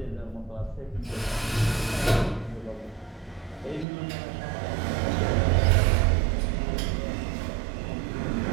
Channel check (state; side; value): drops out; left; at 3.9 s